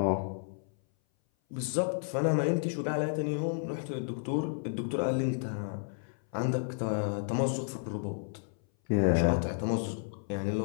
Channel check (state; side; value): silent; right; 57 dB below the other